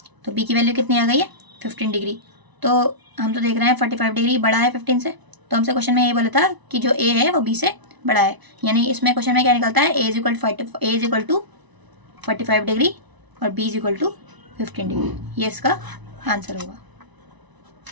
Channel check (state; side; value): late; left; 1.0 ms